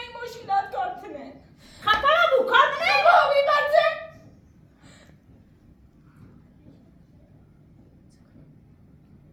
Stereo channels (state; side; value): identical; both; correlation 1.00